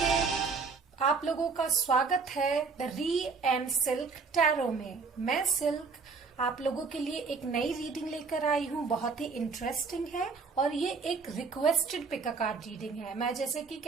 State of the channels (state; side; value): quieter; left; 4.8 dB